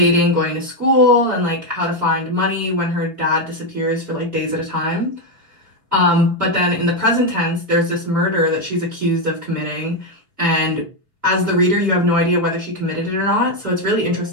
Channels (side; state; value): left; late; 4.5 ms